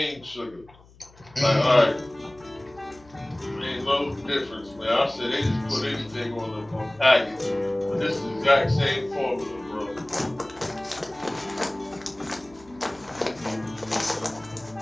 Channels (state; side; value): noise; left; hum, 25 dB below the sound